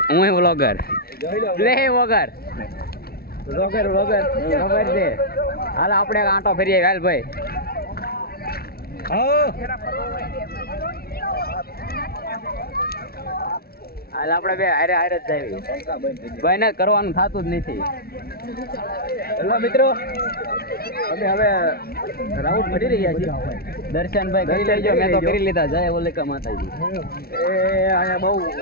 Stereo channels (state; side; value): late; right; 0.44 ms